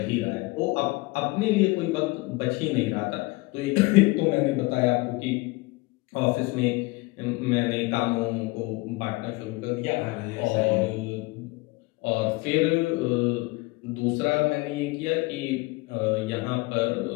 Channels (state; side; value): quieter; right; 23.4 dB